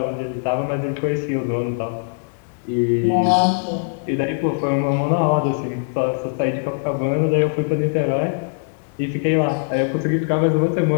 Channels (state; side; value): silent; right; 65 dB below the other